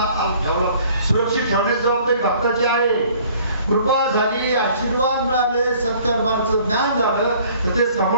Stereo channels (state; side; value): inverted; both; correlation -0.55